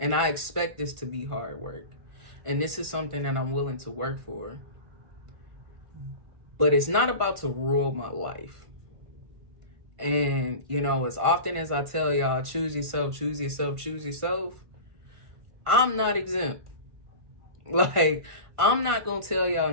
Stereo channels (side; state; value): left; late; 1.5 ms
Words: I expect this to be hard work. And this is something that I'm willing to work for. But it's not about to rule my life. And, you know, as often as I tell y'all, choose yourself, choose yourself, choose yourself, I'm not exempt. Like, I'm not going to tell y'all